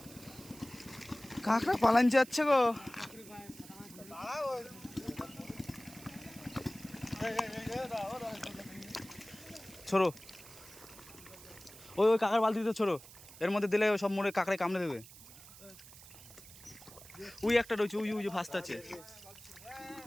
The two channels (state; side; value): noise; right; hiss, 18 dB below the sound